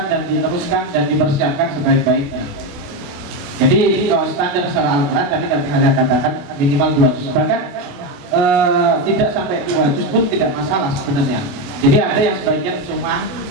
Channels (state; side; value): late; left; 28 ms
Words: dan diteruskan dan dipersiapkan sebaik-baiknya. Jadi kalau standar secara Al-Quran tadi saya katakan minimal 2 juz, bahkan tidak sampai 2 juz pun tidak masalah sebenarnya. Jadi ada yang sebagian cuma